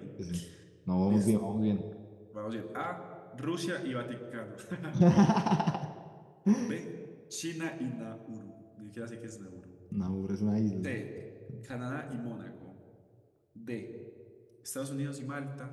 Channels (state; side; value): identical; both; correlation 1.00